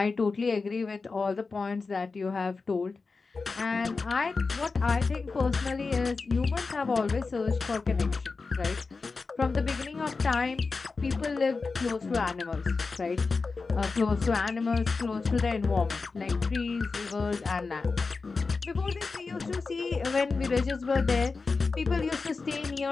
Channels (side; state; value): right; quieter; 4.2 dB